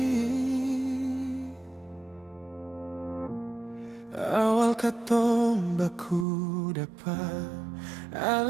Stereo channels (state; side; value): drops out; left; at 6.2 s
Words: Awal katong baku dapat,